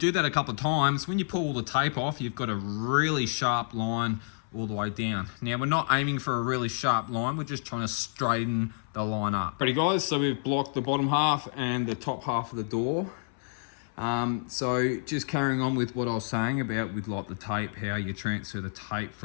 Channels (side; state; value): right; silent; 59 dB below the other